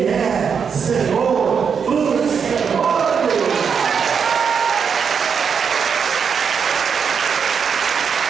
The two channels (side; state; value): left; quieter; 6.6 dB